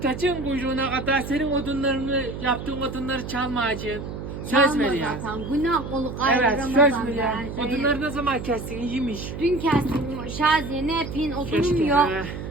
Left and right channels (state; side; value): noise; right; hum, 8 dB below the sound